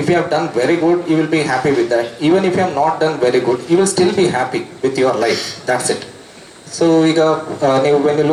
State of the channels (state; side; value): identical; both; correlation 1.00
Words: you have done very good, you will be happy with that. Even if you have not done very good, you will still be happy with your life. That's it. So ಈಗ ನೀವು when you